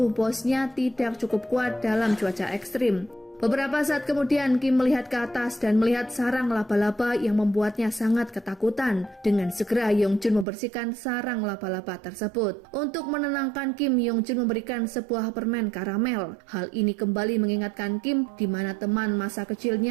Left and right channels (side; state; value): left; drops out; at 10.5 s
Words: bosnya tidak cukup kuat dalam cuaca ekstrim. Beberapa saat kemudian, Kim melihat ke atas dan melihat sarang laba-laba yang membuatnya sangat ketakutan. Dengan segera, Yongchun membersihkan sarang laba-laba tersebut. Untuk menenangkan Kim, Yongchun memberikan sebuah permen karamel. Hal ini kembali mengingatkan Kim di mana teman masa